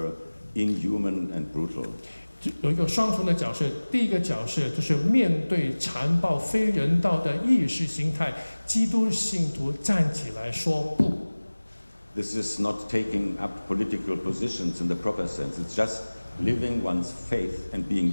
inhuman and brutal. 有一个双重的角色，第一个角色就是面对残暴非人道的意识形态，基督信徒站起来说不。This is not taking up political positions in the proper sense. It's just living one's faith and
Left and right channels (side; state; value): both; inverted; correlation -1.00